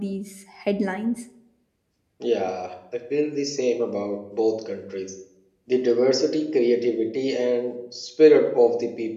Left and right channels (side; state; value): both; identical; correlation 1.00